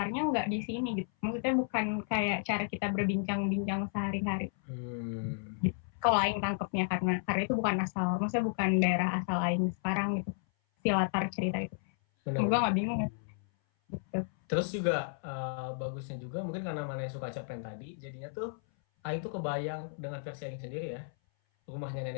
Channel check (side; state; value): right; silent; 56 dB below the other